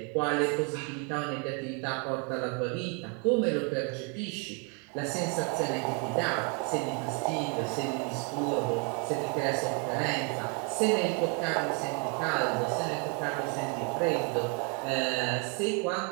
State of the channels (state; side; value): quieter; left; 36.0 dB